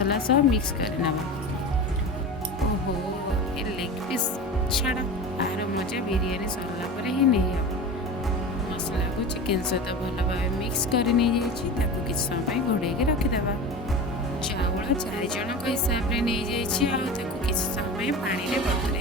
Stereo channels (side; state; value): both; normal; correlation 0.30